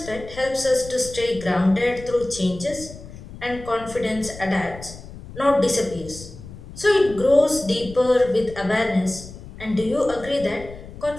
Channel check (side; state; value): left; noise; rumble, 15 dB below the sound